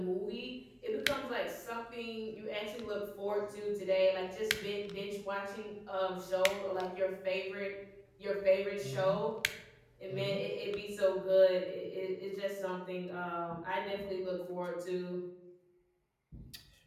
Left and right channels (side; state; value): both; identical; correlation 1.00